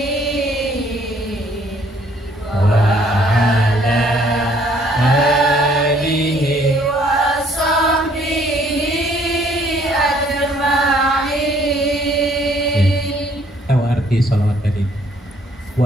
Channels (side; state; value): both; normal; correlation 0.63